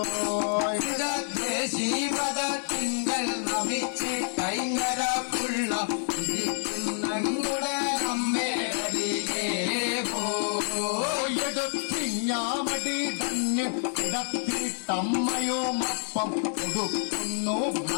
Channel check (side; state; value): right; silent; digital silence